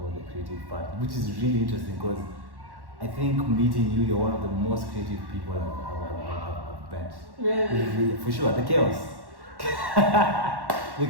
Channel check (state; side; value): late; left; 1.1 ms